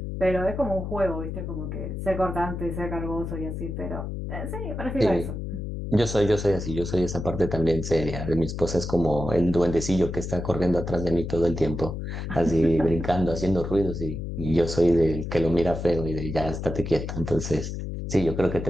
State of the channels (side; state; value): left; noise; hum, 5 dB below the sound